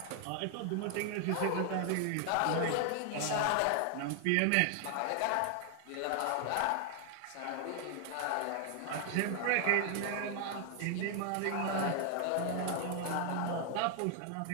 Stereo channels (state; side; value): different; both; correlation 0.00